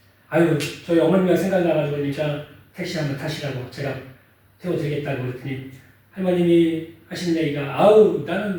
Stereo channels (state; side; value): identical; both; correlation 1.00